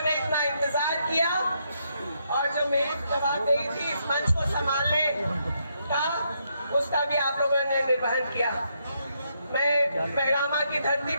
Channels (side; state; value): both; inverted; correlation -0.77